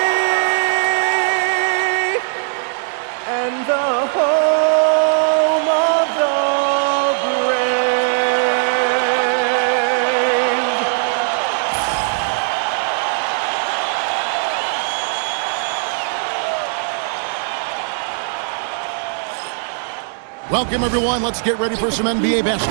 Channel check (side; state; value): left; silent; 67 dB below the other